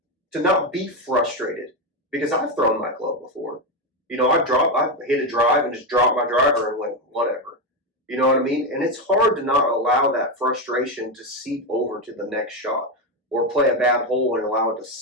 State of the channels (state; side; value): normal; both; correlation 0.10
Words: To not be frustrated, because I've thrown my club before. You know, I've hit a drive and just dropped my driver and went, whatever. You know what I mean? And it's hard to not allow that frustration to seep over to the next shot, or play a bad hole and allow it to